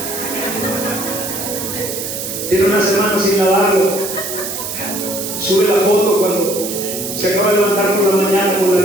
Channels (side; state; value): right; noise; hiss, 6 dB below the sound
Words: Tiene una semana sin lavarlo, sube la foto cuando se acaba de levantar por la mañana con